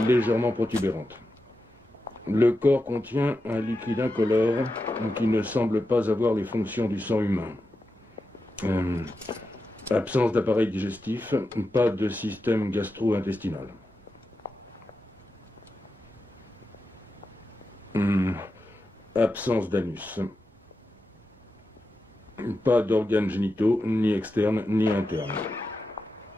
légèrement protubérante. Le corps contient un liquide incolore qui ne semble pas avoir les fonctions du sang humain. Absence d'appareil digestif, pas de système gastro-intestinal. Absence d'anus. Pas d'organes génitaux, ni externes, ni internes.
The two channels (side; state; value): both; normal; correlation 0.89